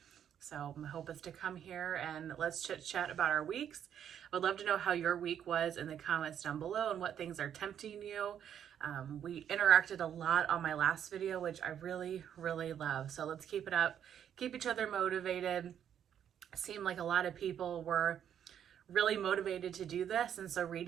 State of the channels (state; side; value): quieter; left; 9.3 dB